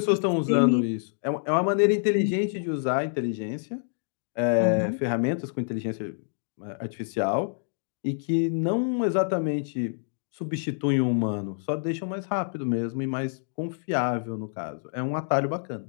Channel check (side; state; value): right; silent; digital silence